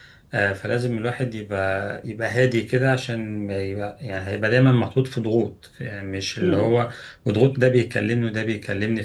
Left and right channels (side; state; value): both; identical; correlation 1.00